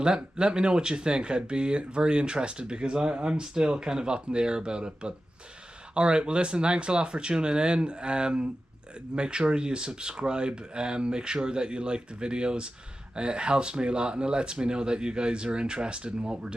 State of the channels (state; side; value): normal; both; correlation 0.93